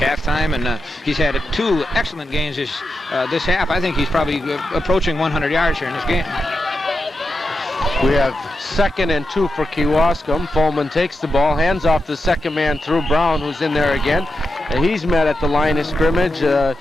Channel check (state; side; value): normal; both; correlation 0.88